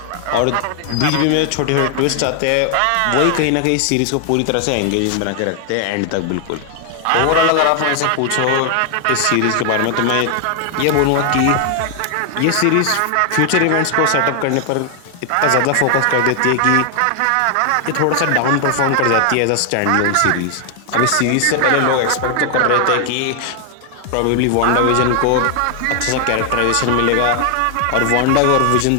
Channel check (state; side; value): different; both; correlation 0.00